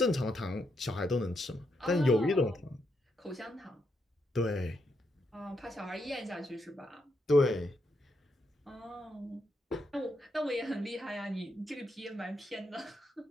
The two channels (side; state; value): both; normal; correlation 0.80